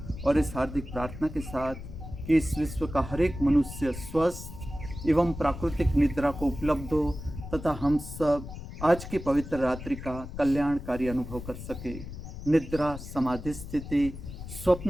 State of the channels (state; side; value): noise; left; rumble, 11 dB below the sound